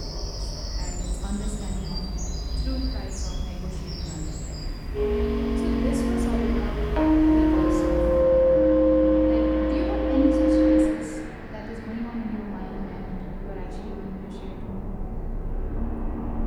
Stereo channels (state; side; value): identical; both; correlation 1.00